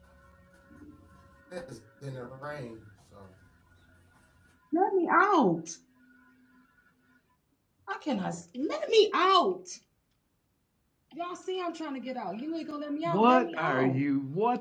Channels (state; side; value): identical; both; correlation 1.00